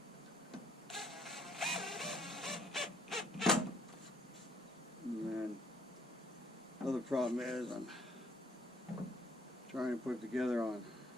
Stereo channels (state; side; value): normal; both; correlation 0.66